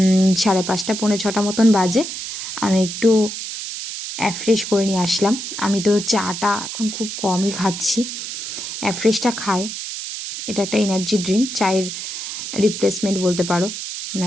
5:30 পৌনে 6টা মতন বাজে। আমি একটু অ্যাফ্রেশ করে নিয়ে আসলাম। আমি তো চাটা এখন খুব কমই খাচ্ছি, অ্যাফ্রেশটা খাই। এটা একটা এনার্জি ড্রিঙ্ক, চায়ের রিপ্লেসমেন্ট বলতে পারো,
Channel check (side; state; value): right; noise; hiss, 7 dB below the sound